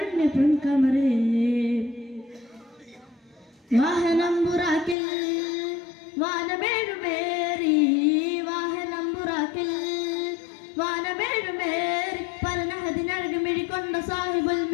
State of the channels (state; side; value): drops out; right; at 5.0 s